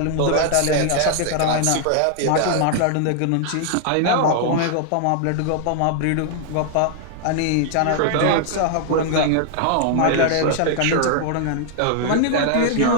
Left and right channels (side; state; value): both; different; correlation 0.00